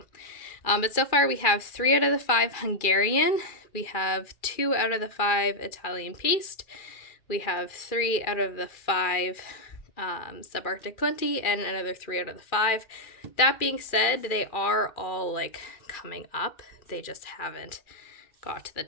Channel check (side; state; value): right; late; 2.3 ms